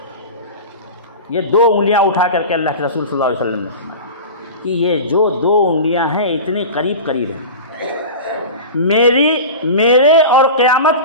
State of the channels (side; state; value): both; inverted; correlation -0.31